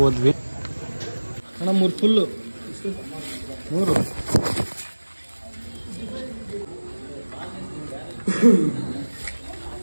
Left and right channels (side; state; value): both; inverted; correlation -1.00